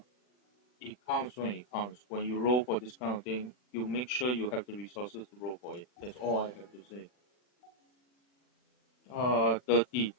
It counts when it counts. When you roll for this kind of thing, you make sure you have the resources to roll for it. That's all I have to say. 30,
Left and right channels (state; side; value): late; right; 40 ms